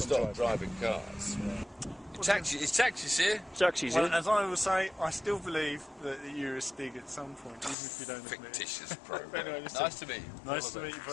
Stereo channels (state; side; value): drops out; right; at 7.8 s